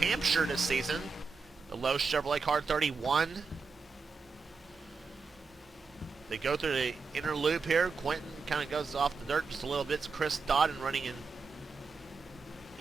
this season. The Lowe's Chevrolet car 31. They go through the inner loop here. Quentin kind of goes off the dirt just a little bit. It's Chris Dodden running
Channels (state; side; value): quieter; left; 4.7 dB